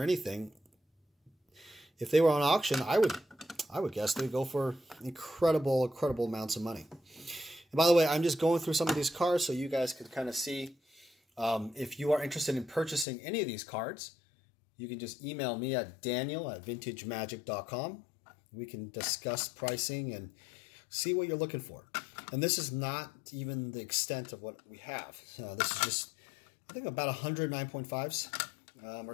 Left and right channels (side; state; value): right; drops out; at 13.1 s